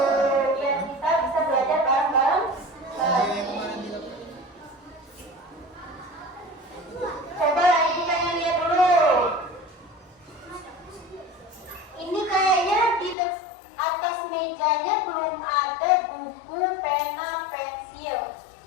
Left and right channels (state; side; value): drops out; right; at 13.2 s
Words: biar kita bisa belajar bareng-bareng lagi. Coba ibu pengen lihat dulu. Ini kayaknya di atas mejanya belum ada buku, pena, pensil.